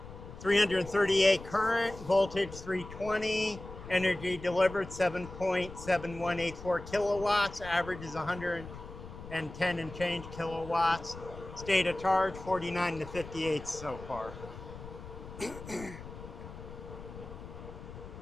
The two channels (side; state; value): left; noise; rumble, 13 dB below the sound